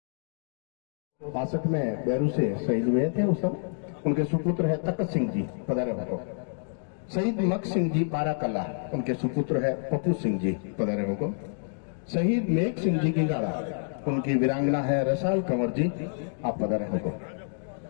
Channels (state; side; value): silent; right; digital silence